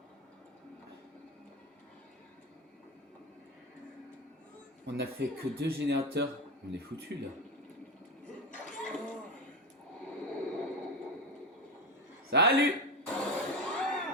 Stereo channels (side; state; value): both; normal; correlation 0.17